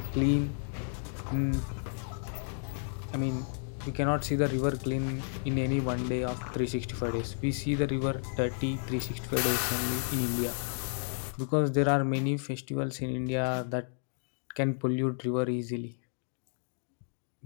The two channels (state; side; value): silent; right; digital silence